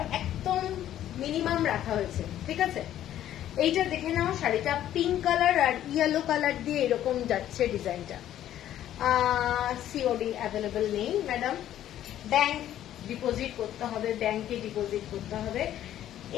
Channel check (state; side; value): quieter; right; 11.9 dB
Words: একদম মিনিমাম রাখা হয়েছে। ঠিক আছে। এইটা দেখে নাও শাড়িটা, পিঙ্ক কালার আর ইয়েলো কালার দিয়ে এরকম যাচ্ছে ডিজাইনটা। সিওডি অ্যাভেলেবল নেই ম্যাডাম, ব্যাংক ডিপোজিট করতে হবে, ব্যাংকে ডিপোজিট করতে হবে।